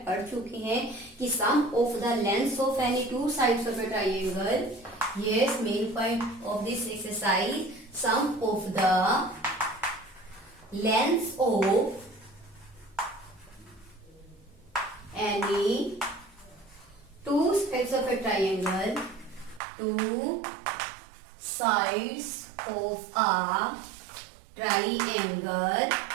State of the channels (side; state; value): left; drops out; at 19.6 s